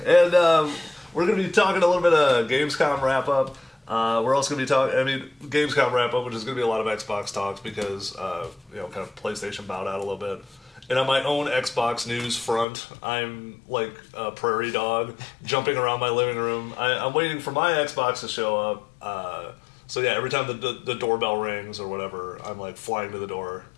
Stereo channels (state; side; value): drops out; right; at 12.7 s